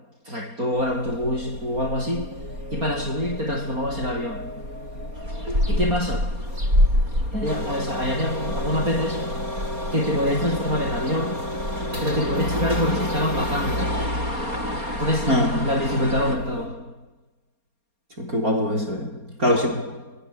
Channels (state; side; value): late; left; 4.3 ms